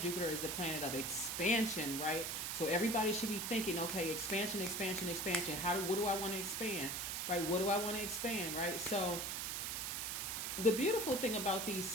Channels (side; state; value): right; noise; hiss, 2 dB below the sound